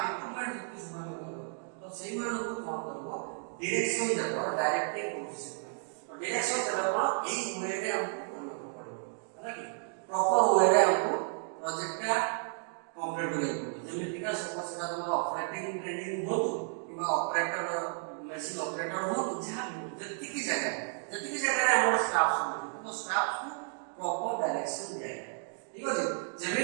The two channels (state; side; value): silent; left; 56 dB below the other